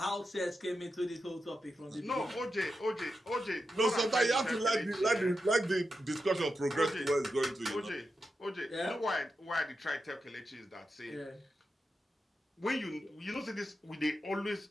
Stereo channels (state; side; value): normal; both; correlation 0.89